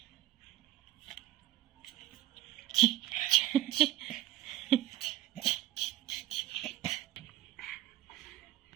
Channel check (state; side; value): quieter; left; 14.6 dB